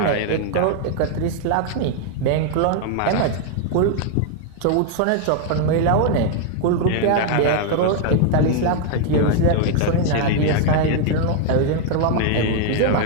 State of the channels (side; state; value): both; different; correlation 0.00